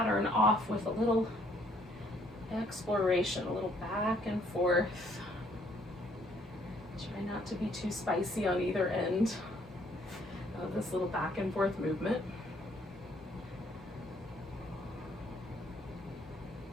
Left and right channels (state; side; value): normal; both; correlation 0.65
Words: off with a little exploration, a little back and forth. Try not to be too spicy on either end of this little back and forth movement.